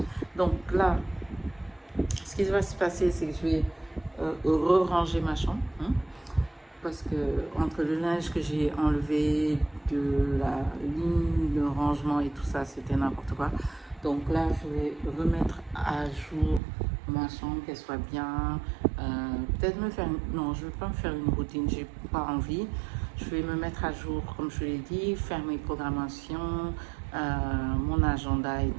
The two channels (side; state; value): left; drops out; at 16.6 s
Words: Donc là, ce qui va se passer, c'est que je vais re-ranger ma chambre. Hein, parce que entre le linge que j'ai enlevé de la ligne de rangement et tout ça, c'était n'importe quoi. Donc là, je vais remettre à jour ma chambre, qu'elle soit bien. Peut-être me faire... Non, je ne vais pas me faire une routine, j'ai pas envie. Je vais me mettre à jour, comme je l'ai dit, faire mes programmations, mon agenda et